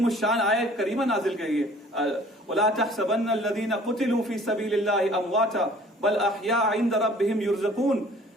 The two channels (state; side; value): normal; both; correlation 0.52